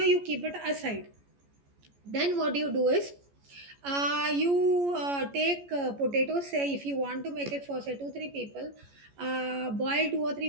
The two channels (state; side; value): late; left; 14 ms